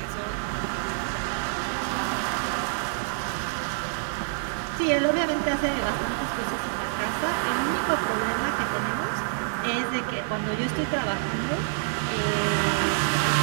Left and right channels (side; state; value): left; silent; digital silence